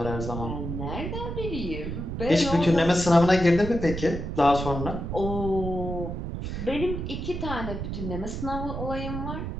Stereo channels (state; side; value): noise; right; rumble, 5 dB below the sound